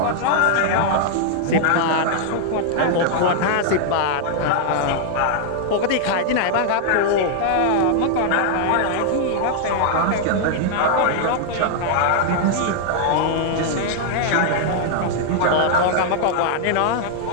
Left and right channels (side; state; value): both; different; correlation -0.01